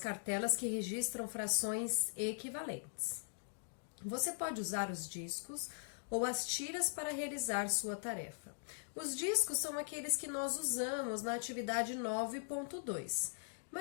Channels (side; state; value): right; silent; digital silence